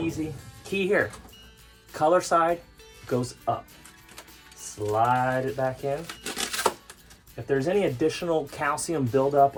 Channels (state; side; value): identical; both; correlation 1.00